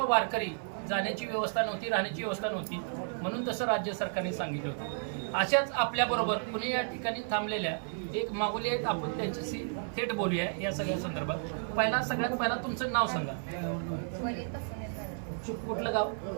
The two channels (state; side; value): silent; left; 56 dB below the other